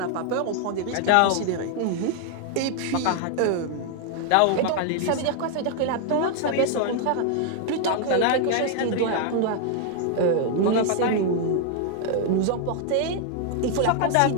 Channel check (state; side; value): different; both; correlation 0.00